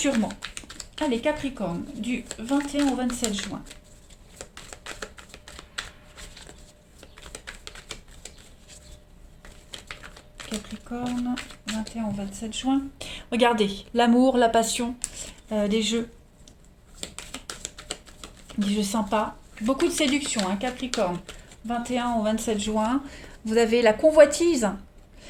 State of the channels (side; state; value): both; identical; correlation 1.00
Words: Allez, Capricorne, du 21 au 27 juin. Capricorne, 21 au 27 juin. Regardez, l'amour, la passion, des jeux. Des jeux sympas. Beaucoup de séduction, Capricorne. 21 au 27 juin. Vous avez la convoitise.